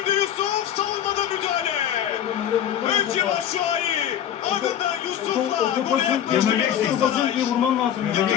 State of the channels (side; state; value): right; quieter; 10.1 dB